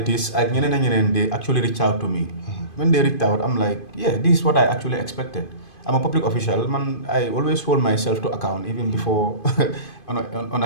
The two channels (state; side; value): late; right; 2.5 ms